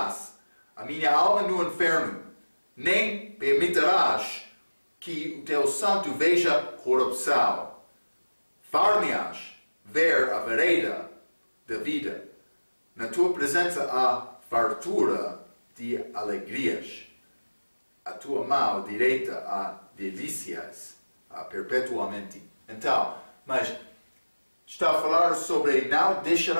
a minha alma no inferno, nem permitirás que o teu santo veja corrupção. Far-me-ás ver a vereda da vida. Na tua presença há fartura de alegrias. A tua mão direita há delícias perpetuamente. Então, mas está a falar sobre não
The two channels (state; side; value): inverted; both; correlation -1.00